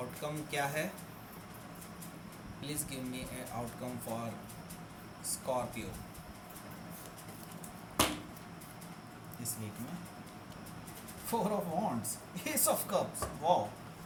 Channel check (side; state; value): both; identical; correlation 1.00